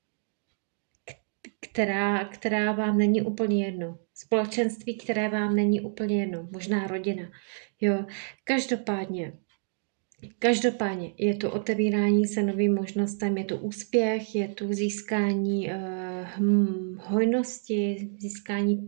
která vám není úplně jedno. Společenství, které vám není úplně jedno. Možná rodina. Jo. Každopádně je to otevírání se novým možnostem, je to úspěch, je tu získání hojnosti, získání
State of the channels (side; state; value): left; silent; 59 dB below the other